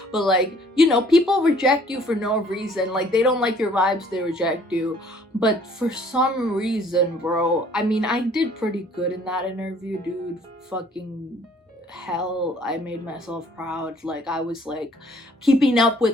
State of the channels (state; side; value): normal; both; correlation 0.58